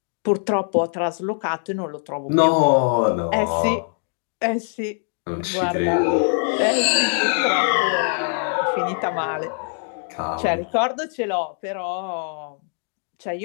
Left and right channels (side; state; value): right; silent; 57 dB below the other